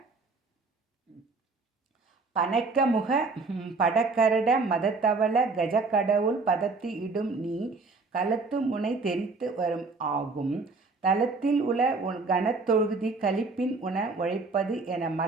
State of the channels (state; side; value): quieter; left; 3.9 dB